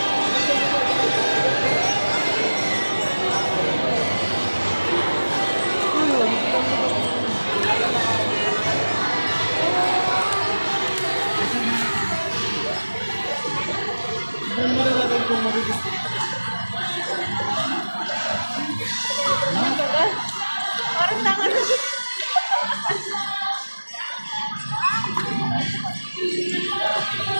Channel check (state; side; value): inverted; both; correlation -1.00